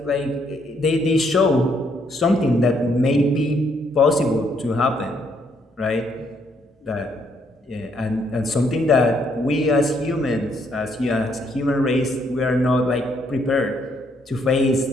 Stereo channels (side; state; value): both; normal; correlation 0.71